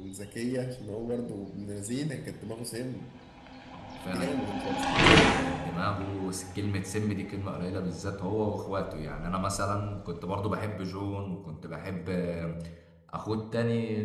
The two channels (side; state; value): both; identical; correlation 1.00